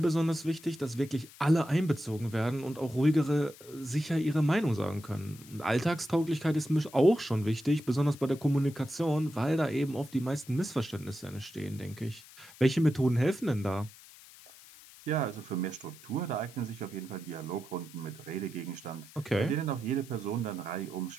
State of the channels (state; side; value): noise; left; hiss, 20 dB below the sound